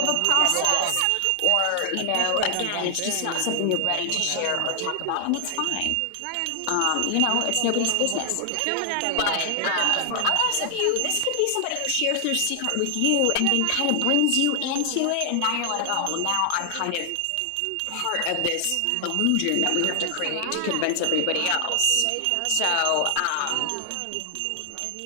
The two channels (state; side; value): different; both; correlation 0.00